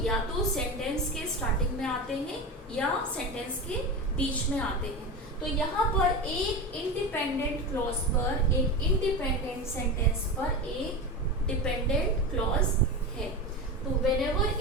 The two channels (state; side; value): normal; both; correlation 0.23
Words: या तो सेंटेंस के स्टार्टिंग में आते हैं या सेंटेंस के बीच में आते हैं। तो यहाँ पर एक इंडिपेंडेंट क्लॉज पर, एक इंडिपेंडेंट सेंटेंस पर एक डिपेंडेंट क्लॉज है। तो व्हेनेवर